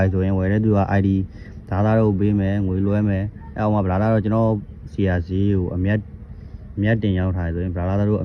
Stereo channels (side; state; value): both; identical; correlation 1.00